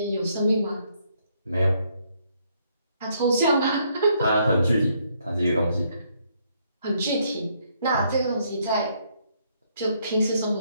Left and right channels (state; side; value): inverted; both; correlation -0.71